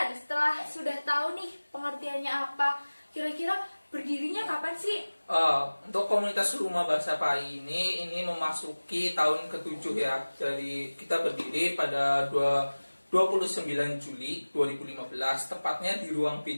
setelah sudah tahu nih pengertiannya apa, kira-kira berdirinya kapan sih? Untuk komunitas Rumah Bahasa PAI ini memasuki tahun ke-7 ya. Jadi kita berdiri pada 29 Juli 2015, tepatnya di ruang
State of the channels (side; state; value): both; inverted; correlation -1.00